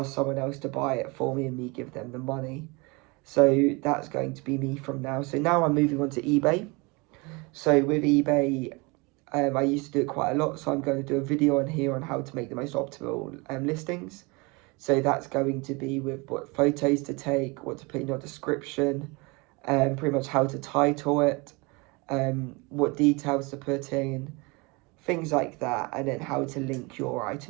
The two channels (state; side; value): quieter; left; 27.3 dB